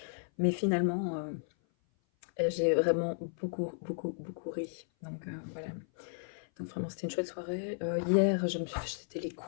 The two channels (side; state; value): right; silent; 55 dB below the other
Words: mais finalement j'ai vraiment beaucoup ri. Donc voilà. Donc vraiment c'était une chouette soirée. Hier c'était les